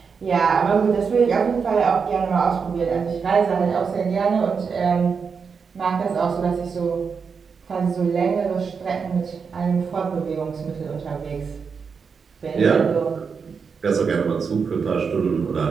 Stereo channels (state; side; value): quieter; left; 5.8 dB